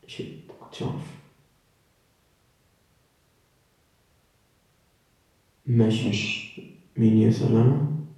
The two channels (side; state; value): both; identical; correlation 1.00